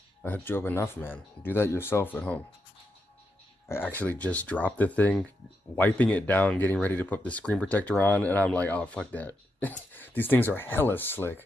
I hooked you up enough, man. Do that yourself at home. I actually just dropped the thing, wiping it down, getting ready to put the screen protector on, and I'm like, oh, fuck that. These things are hella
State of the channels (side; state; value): both; normal; correlation 0.84